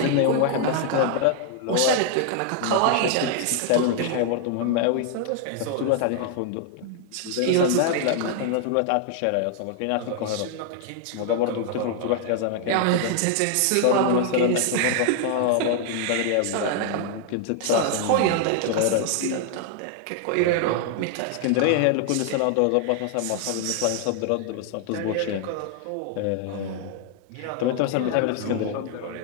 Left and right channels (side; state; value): both; different; correlation 0.00